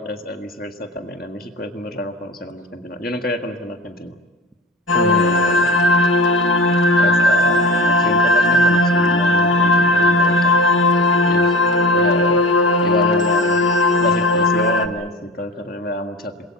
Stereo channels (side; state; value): both; normal; correlation 0.35